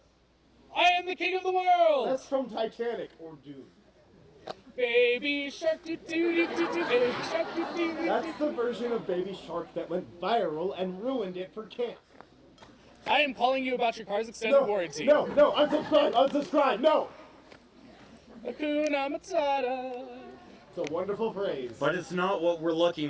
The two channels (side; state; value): both; identical; correlation 1.00